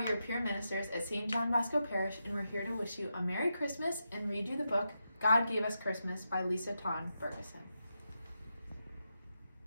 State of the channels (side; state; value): both; inverted; correlation -0.87